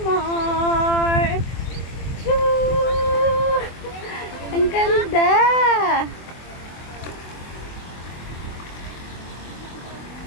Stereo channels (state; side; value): late; right; 24 ms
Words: more. Choo! Ang ganda.